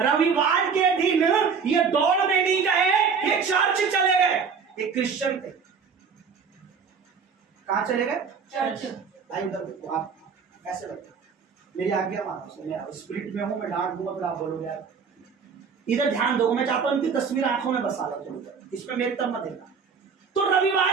रविवार के दिन ये दौड़ में नहीं गए, ये चर्च चले गए। एक क्रिश्चियन थे। कहां चले गए? चर्च। भाई उधर देखो, आप ऐसे बैठो, मेरी आज्ञा मानो। मैं स्पिरिट में हूं, मैं डांट दूंगा फिर आप बोलोगे यार। इधर ध्यान दो, मैं चाहता हूं इनकी तस्वीर आंखों में बसा लो थोड़ी देर, इसमें मेरी तरफ मत देखना। तो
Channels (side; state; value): left; quieter; 5.9 dB